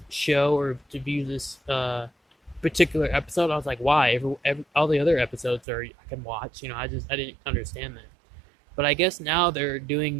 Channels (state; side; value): drops out; left; at 5.6 s